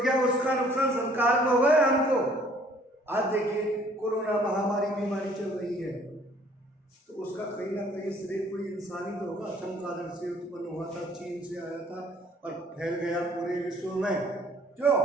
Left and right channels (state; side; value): normal; both; correlation 0.59